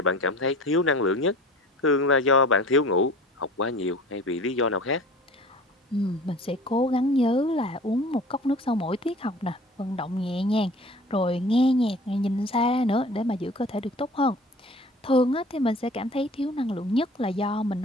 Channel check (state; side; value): normal; both; correlation 0.44